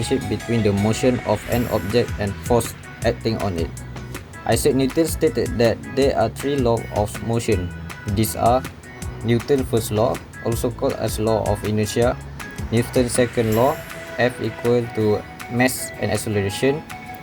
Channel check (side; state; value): both; identical; correlation 1.00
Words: between the motion of an object and force acting on it. Isaac Newton stated that there are three laws of motion. These are Newton's first law, also called as law of inertia, Newton's second law, F equal to mass and acceleration,